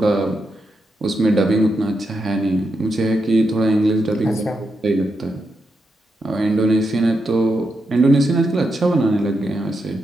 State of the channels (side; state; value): both; normal; correlation 0.84